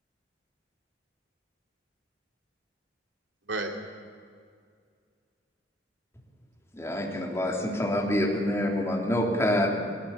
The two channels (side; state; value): both; normal; correlation 0.61